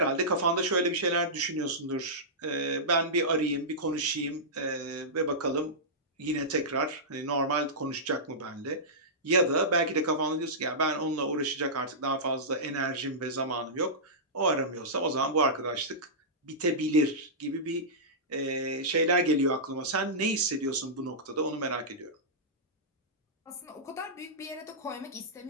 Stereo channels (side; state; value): both; normal; correlation -0.15